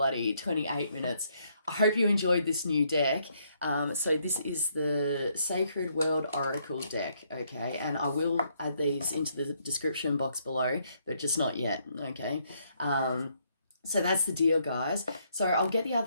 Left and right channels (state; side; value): inverted; both; correlation -0.72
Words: 28 minutes. I hope you enjoyed this new deck. So this is the Sacred World Oracle deck, okay? And I will add these into the description box below, but just not yet, okay? So that's the deal, guys. So I'll get the